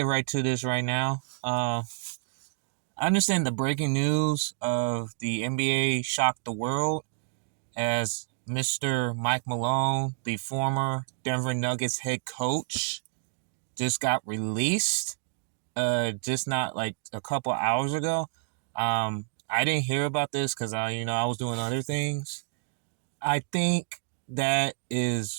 right to this right now. I understand the breaking news of the NBA shocked the world as Mr. Mike Malone, the former Denver Nuggets head coach, just got released. Just not like a couple hours ago. I didn't hear about this because I was doing other things. I think that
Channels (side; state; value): left; silent; digital silence